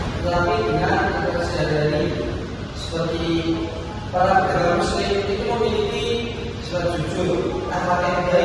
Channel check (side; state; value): both; identical; correlation 1.00